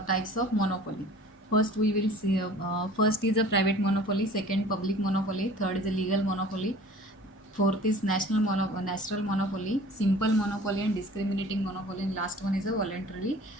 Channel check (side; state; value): both; normal; correlation 0.46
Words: First we will see first is a private monopoly, second public monopoly, third is a legal monopoly, fourth is natural monopoly, simple monopoly and discriminating monopoly, and last one is a voluntary